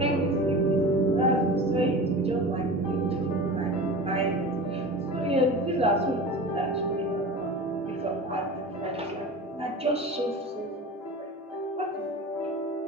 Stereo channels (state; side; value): normal; both; correlation 0.33